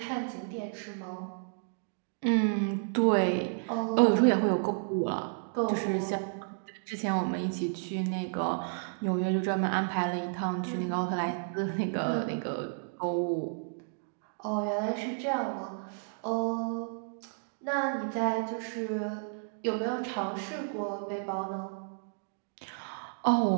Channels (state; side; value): silent; left; digital silence